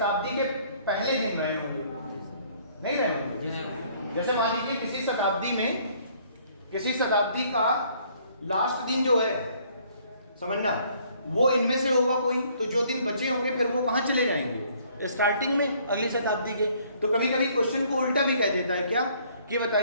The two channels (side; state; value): both; inverted; correlation -0.62